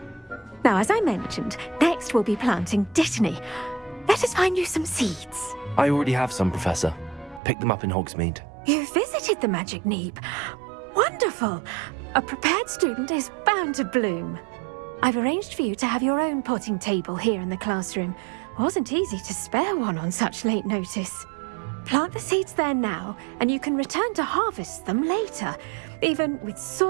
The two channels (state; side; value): drops out; left; at 7.4 s